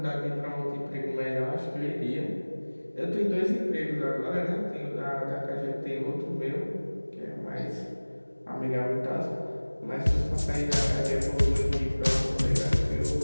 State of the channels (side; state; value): both; inverted; correlation -1.00